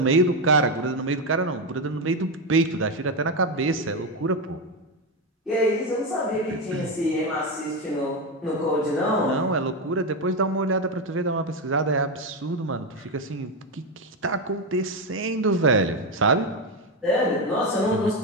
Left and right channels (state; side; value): normal; both; correlation 0.10